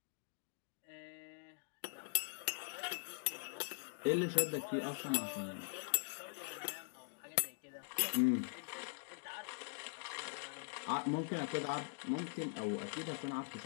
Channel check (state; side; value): silent; right; digital silence